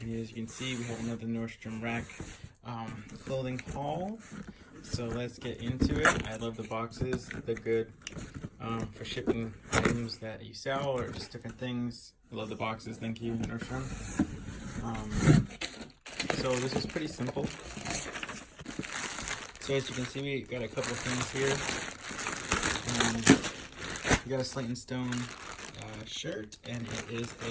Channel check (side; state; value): both; identical; correlation 1.00